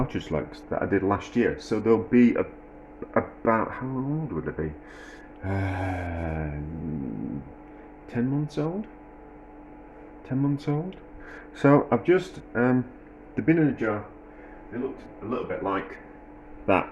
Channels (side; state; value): both; identical; correlation 1.00